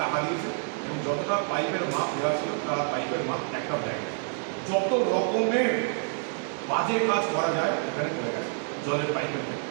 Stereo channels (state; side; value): silent; left; 56 dB below the other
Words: টাকা দিয়েছে এবং যতটা পাইপের মাপ দেওয়া ছিল তারা পাইপের মাপ একটাও দেয় না। যত রকমের বাজে কাজ করা যায় এখানে করে গেছে। জলের পাইপের ক্ষেত্রে,